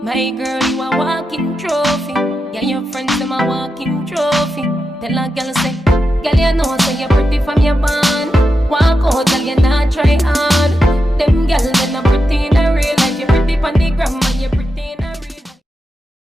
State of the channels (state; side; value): normal; both; correlation 0.88